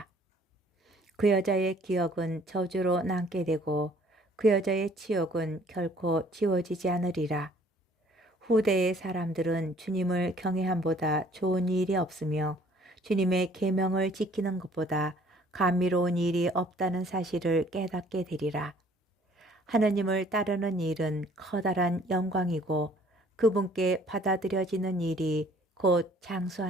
그 여자의 기억은 저주로 남게 되고 그 여자의 치욕은 결코 지워지지 않으리라. 후대의 사람들은 주님을 경외함보다 좋은 일이 없으며 주님의 계명을 지키는 것보다 감미로운 일이 없다는 사실을 깨닫게 되리라. 하느님을 따르는 일은 커다란 영광이고 그분께 받아들여지는 일이 곧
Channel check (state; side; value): normal; both; correlation 0.57